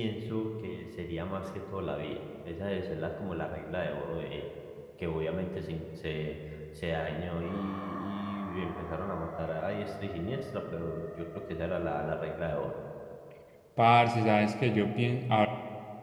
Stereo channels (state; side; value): identical; both; correlation 1.00